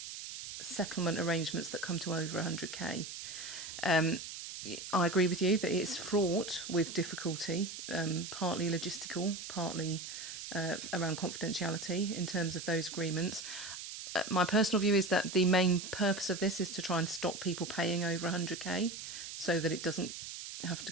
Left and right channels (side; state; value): right; noise; hiss, 9 dB below the sound